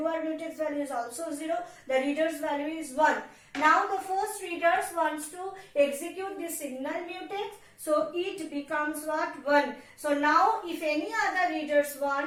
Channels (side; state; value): both; identical; correlation 1.00